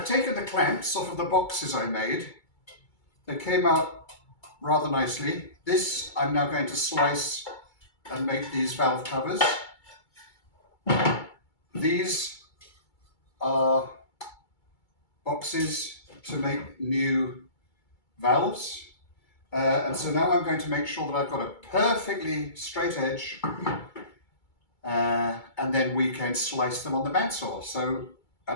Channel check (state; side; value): late; right; 2.3 ms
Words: taken the clamps off of the boxes I made. They came out rather nicely. This I'm now going to slice and make these valve covers. These are boxes to make new valves. And so now I'm going to make sure that I've got a perfectly straight edge, and then we can slice them on the bandsaw. So